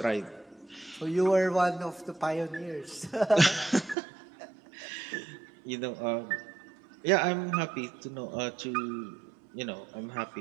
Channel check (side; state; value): left; drops out; at 4.0 s